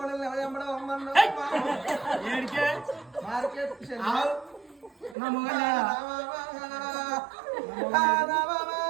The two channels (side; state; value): left; drops out; at 5.2 s